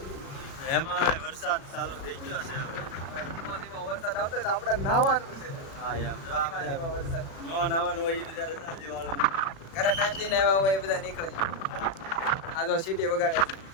એમાં વરસાદ ચાલુ થઈ ગયો છે. ધીમો ધીમો વરસાદ આવતો હોય તો આપણે નાહવાનું છે. હા યાર જો આ ધીમા ધીમા વરસાદ નો નાવાનું હોય એ બધા રજા લેવાનું. ઘરે ટાઈમથી આવ્યા હોય એ બધા નીકળે. આ જો સીટી વગાડે છે.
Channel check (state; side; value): late; right; 36 ms